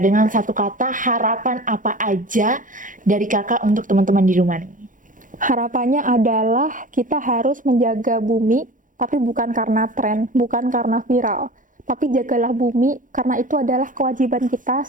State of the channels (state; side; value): late; left; 0.38 ms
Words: satu kata, harapan apa aja dari Kakak untuk teman-teman di rumah nih? Harapannya adalah kita harus menjaga bumi, tapi bukan karena tren, bukan karena viral. Tapi jagalah bumi, karena itu adalah kewajiban kita